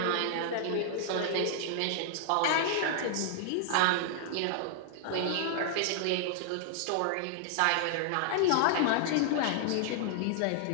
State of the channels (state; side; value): different; both; correlation -0.01